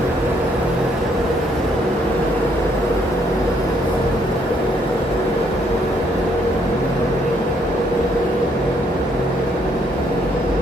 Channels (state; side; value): normal; both; correlation 0.69